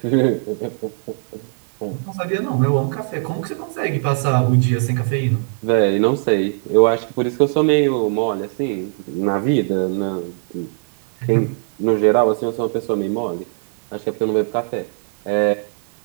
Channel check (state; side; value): silent; left; 66 dB below the other